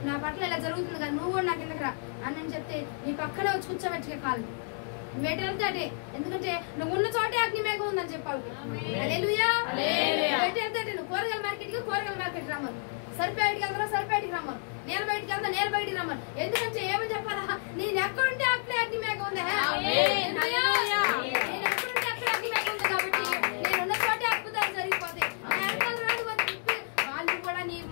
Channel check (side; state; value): right; silent; 58 dB below the other